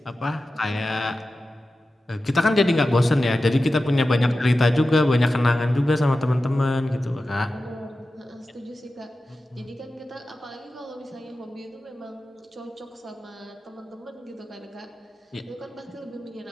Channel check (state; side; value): normal; both; correlation 0.93